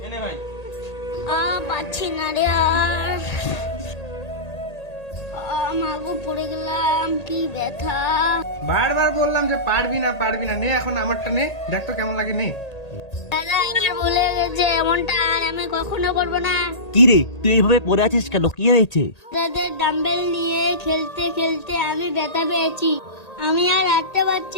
এনে ভাই। পাচ্ছি না রে আর। মাগো, পড়ে গেলাম, কি ব্যথা। বারবার বললাম যে পারবি না নে এখন আমারটা নে, দেখ তো কেমন লাগে, নে। দাদা, আমার ভুলে গেছে, এমনটা আর আমি কখনো করবো না। কি রে, তুই এইভাবে পড়ে আছিস কেন? কি হয়েছে? দাদা, ডাম্বেল নিয়ে খেলতে খেলতে আমি ব্যথা পেয়েছি, আমি আর হাঁটতে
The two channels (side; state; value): right; late; 1.8 ms